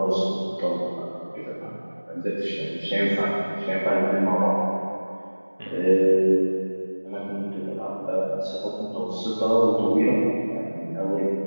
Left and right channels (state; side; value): inverted; both; correlation -1.00